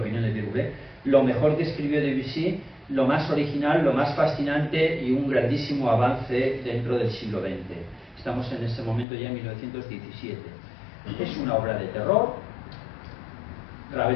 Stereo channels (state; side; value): drops out; right; at 9.1 s